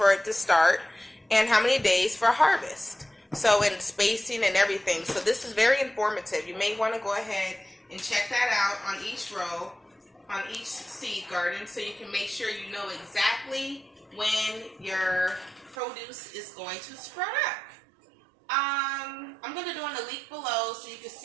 it to start and how many days for harvest. So, and spacing and everything. So this is very informative. You may want to go ahead and check that out on each row, on each seed garden, so you can make sure you know exactly when your produce is going to sprout up. I'm going to do a link below so you can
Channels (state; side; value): drops out; left; at 15.8 s